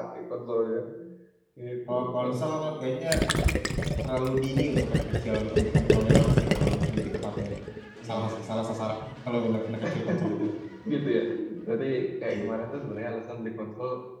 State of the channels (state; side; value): identical; both; correlation 1.00